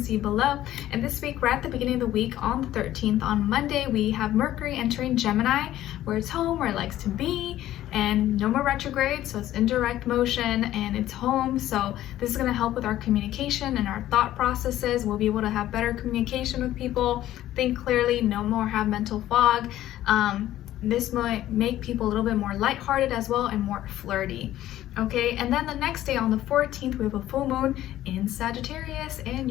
see below. And this week, right at the beginning of the week, on the 13th, on Monday, we have Mercury entering Gemini, where it's home, where it likes to be, and no more retrograde, so it's in direct motion and it's home. So this is going to help with our communication and our thought processes. We'll be able to have better communication with people, think clearly, no more have mental fog. This might make people a little bit more lighthearted as well and more flirty. Okay, and then the next day on the 14th, we have a full moon in Sagittarius in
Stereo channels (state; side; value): quieter; right; 13.6 dB